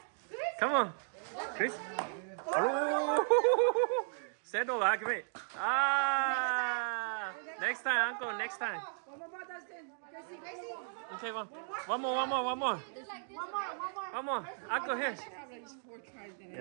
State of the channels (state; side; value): silent; left; digital silence